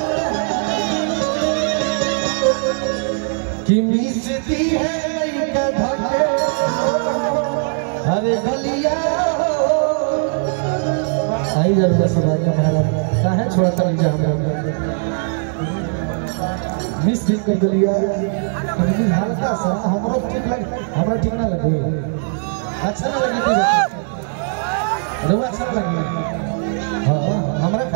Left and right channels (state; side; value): silent; left; 58 dB below the other